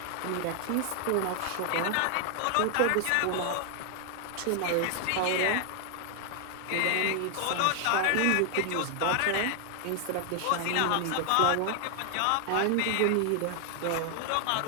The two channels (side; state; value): both; different; correlation 0.00